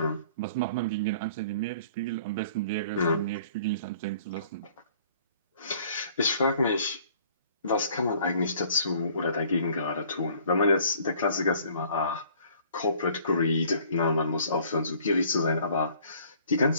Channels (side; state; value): both; inverted; correlation -0.55